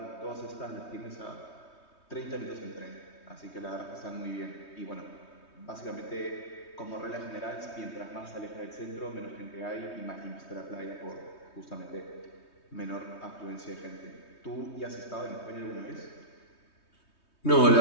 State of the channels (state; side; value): late; right; 3.2 ms